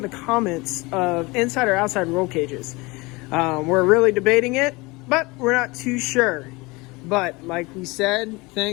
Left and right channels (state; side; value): quieter; right; 24.3 dB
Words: the comments of inside or outside roll cages. We're really debating it, but we're not too sure. But like we said,